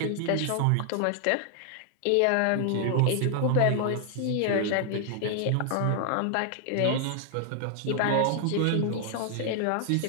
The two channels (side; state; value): both; different; correlation 0.00